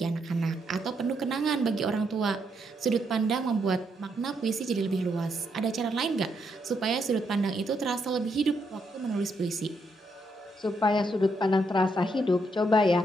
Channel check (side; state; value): both; normal; correlation 0.77